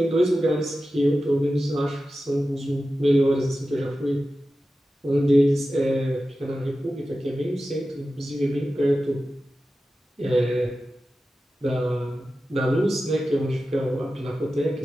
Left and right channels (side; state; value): both; normal; correlation 0.93